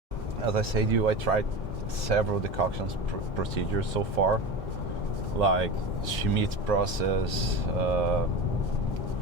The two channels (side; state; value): both; normal; correlation 0.27